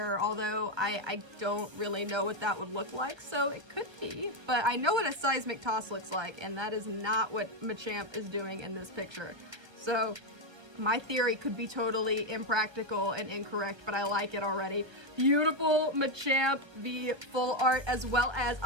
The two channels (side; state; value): left; late; 1.3 ms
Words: although I don't really know what that would look like, so it could be. But I know what a Seismic Toss looks like, and that is not what Machamp is doing in this picture. So my theory could be totally impractical and incorrect, but I like it already. Beautiful Machamp V full art, as well as